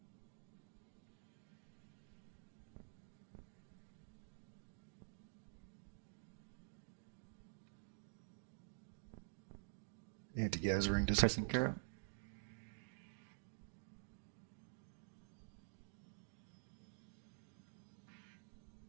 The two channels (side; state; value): left; silent; digital silence